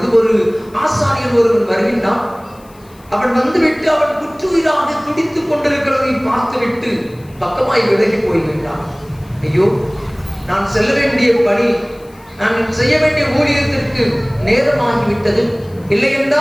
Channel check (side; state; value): left; noise; hiss, 29 dB below the sound